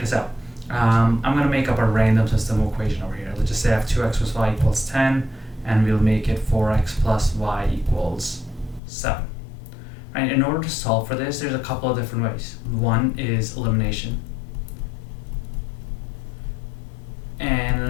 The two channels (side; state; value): right; drops out; at 8.8 s